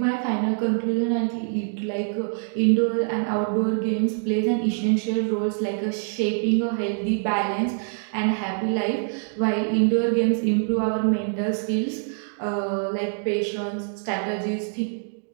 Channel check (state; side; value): silent; left; 62 dB below the other